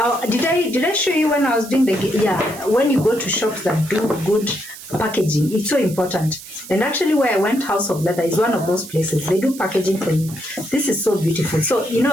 Did I show you when I was doing when you go to shops that do good packaging, it's so important. And actually where I went, House of Leather is one of those places. They do packaging for you. This is so beautiful. So you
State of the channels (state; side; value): noise; right; hiss, 15 dB below the sound